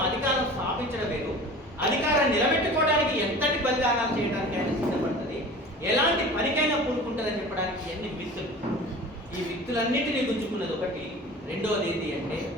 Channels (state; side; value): normal; both; correlation 0.39